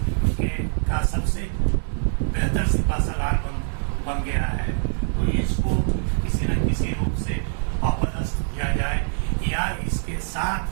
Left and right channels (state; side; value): silent; left; digital silence